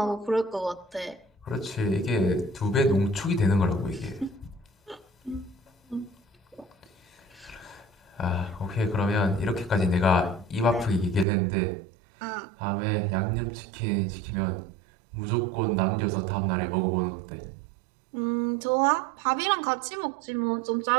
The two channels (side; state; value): left; drops out; at 11.2 s